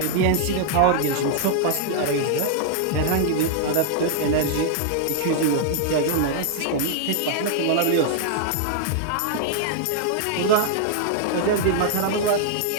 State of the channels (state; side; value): different; both; correlation -0.01